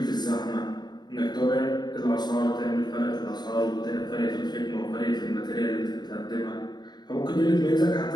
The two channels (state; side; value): late; right; 0.20 ms